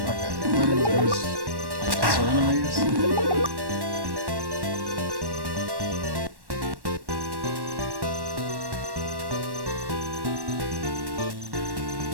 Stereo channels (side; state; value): left; late; 1.1 ms